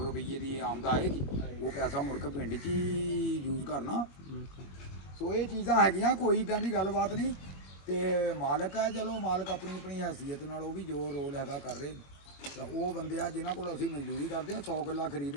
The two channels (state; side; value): late; right; 21 ms